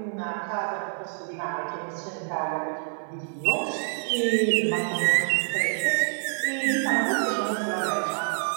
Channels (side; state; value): left; silent; 60 dB below the other